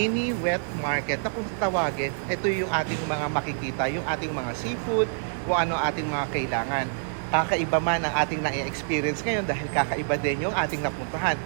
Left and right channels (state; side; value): silent; left; 60 dB below the other